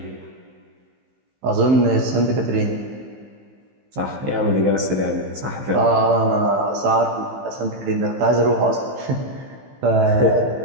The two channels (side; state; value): left; late; 15 ms